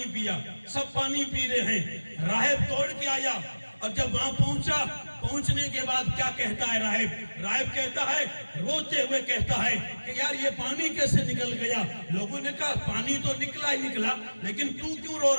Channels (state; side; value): inverted; both; correlation -1.00